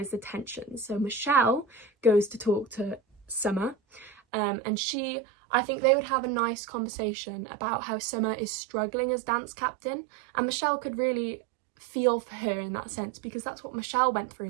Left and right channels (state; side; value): drops out; left; at 4.2 s